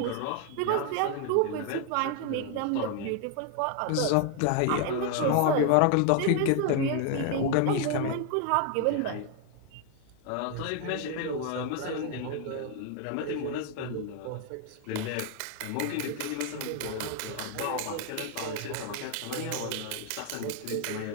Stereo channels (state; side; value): different; both; correlation 0.00